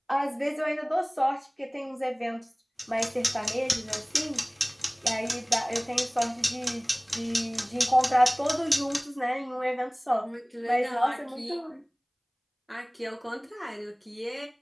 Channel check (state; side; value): identical; both; correlation 1.00